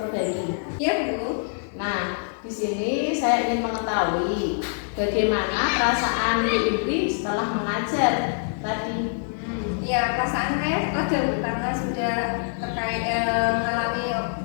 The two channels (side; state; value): right; silent; 62 dB below the other